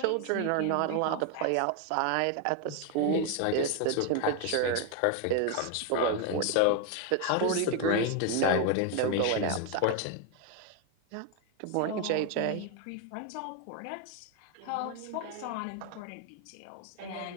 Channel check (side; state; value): both; different; correlation 0.01